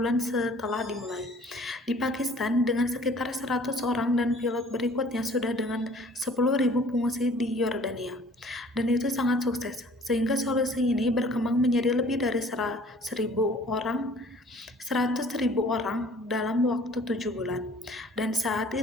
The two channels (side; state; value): both; normal; correlation 0.52